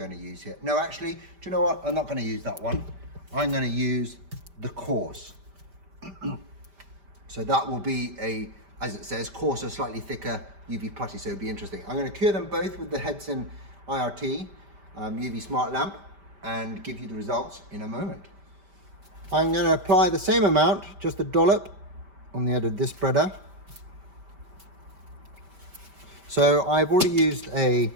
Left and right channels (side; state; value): left; late; 5.1 ms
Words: to use here. No, actually, do you know what? I'm not going to use that one. I'm going to use the coarse. So that will be a, as it says, coarser, slightly thicker UV putty, so it'll be interesting. I'm going to cure them both with the Hedson IRT UV Smart Lamp and give you the results in a moment. I'm going to apply the same amount, just a dollop on the end of this spreader. So I've already used a